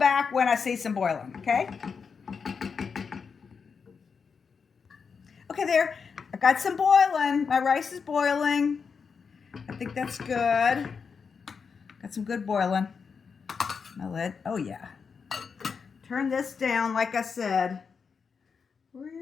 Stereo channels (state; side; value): quieter; right; 5.8 dB